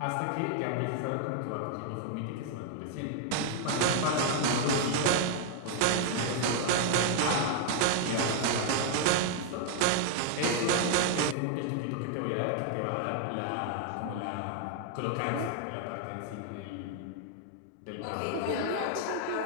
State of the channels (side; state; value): both; different; correlation 0.00